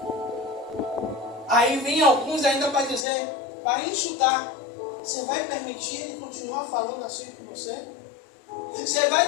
Aí vem alguns ainda para dizer, para insultar: você vai permitir ele continuar falando assim com você? Você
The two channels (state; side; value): drops out; right; at 3.1 s